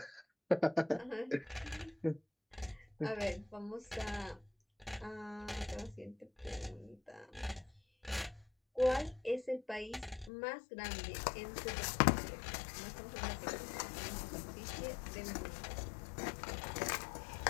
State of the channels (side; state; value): right; drops out; at 10.3 s